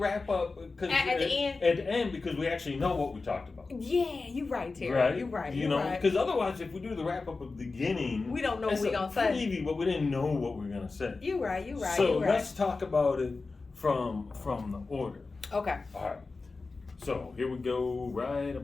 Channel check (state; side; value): quieter; right; 3.9 dB